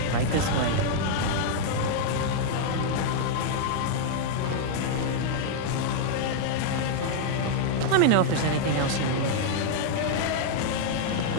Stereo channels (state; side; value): different; both; correlation -0.01